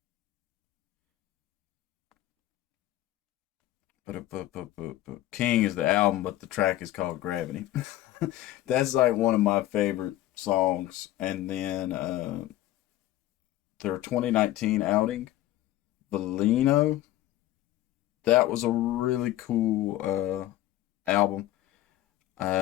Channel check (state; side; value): quieter; right; 14.7 dB